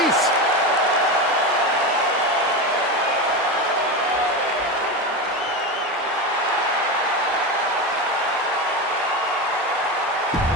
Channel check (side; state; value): both; normal; correlation 0.19